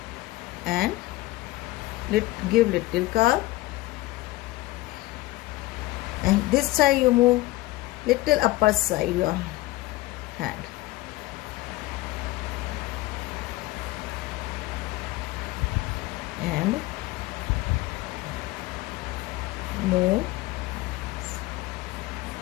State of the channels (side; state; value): right; quieter; 18.6 dB